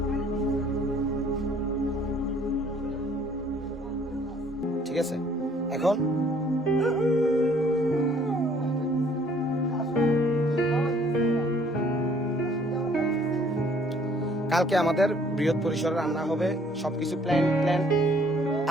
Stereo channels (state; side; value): normal; both; correlation 0.59